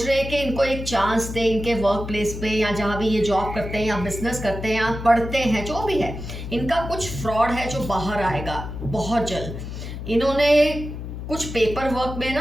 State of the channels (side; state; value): left; noise; hum, 8 dB below the sound